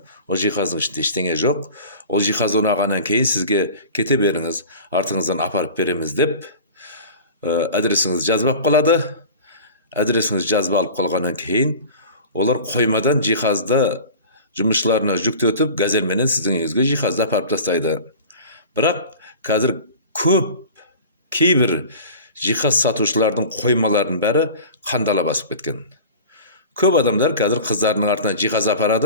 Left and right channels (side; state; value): both; inverted; correlation -0.38